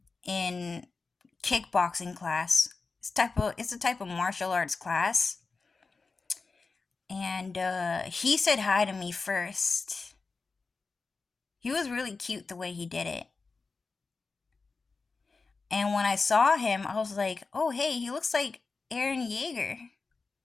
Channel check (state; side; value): quieter; right; 4.2 dB